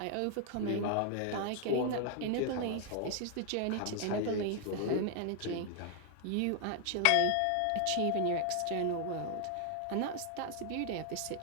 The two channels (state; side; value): different; both; correlation 0.00